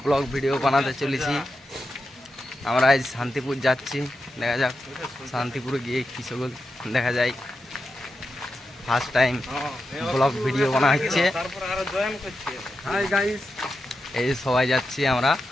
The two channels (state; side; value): normal; both; correlation 0.89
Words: blog video বানাতে চলেছি। আমরা আজ শান্তিপুর যাচ্ছি, দেখা যাক শান্তিপুরে গিয়ে কি সকল দেখা যায়। ফার্স্ট টাইম ব্লগ ভিডিও বানা হচ্ছে। এই সবাই যাচ্ছি, আমরা